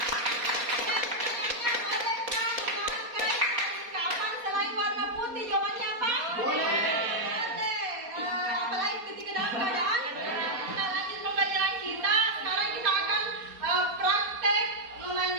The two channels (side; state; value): left; late; 4.2 ms